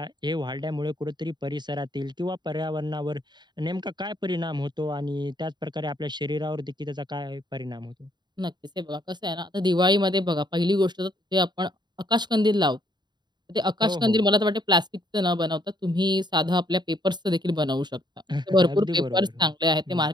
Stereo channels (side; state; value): left; late; 0.21 ms